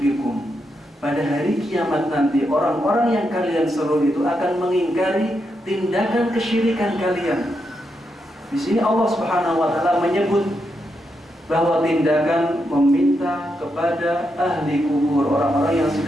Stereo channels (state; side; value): normal; both; correlation 0.83